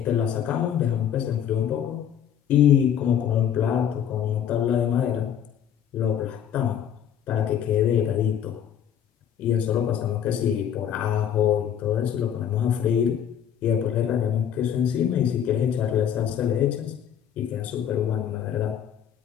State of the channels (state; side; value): quieter; right; 9.3 dB